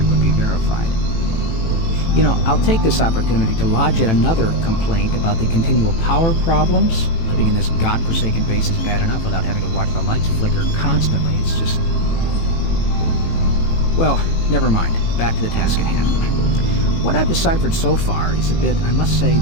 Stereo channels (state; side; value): late; right; 18 ms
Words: would be verified. You know, I'll take this opportunity to lodge yet another complaint about the continual power problems. Living in this godforsaken base is bad enough without having to watch the lights flicker constantly. It's just... Well, never mind. Back to the task at hand. What I've deciphered so far is a bit, I must say,